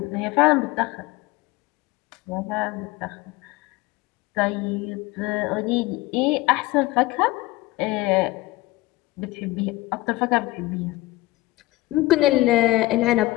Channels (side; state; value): right; quieter; 19.3 dB